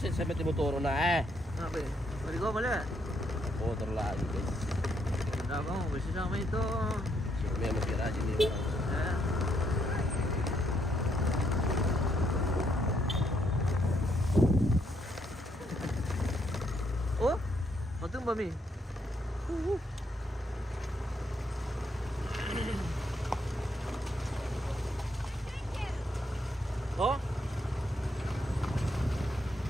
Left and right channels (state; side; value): normal; both; correlation 0.74